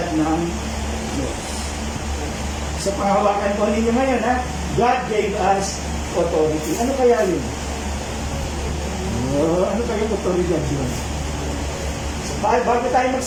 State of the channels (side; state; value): both; identical; correlation 1.00